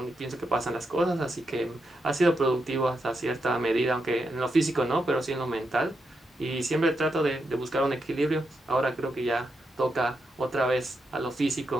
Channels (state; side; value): normal; both; correlation 0.84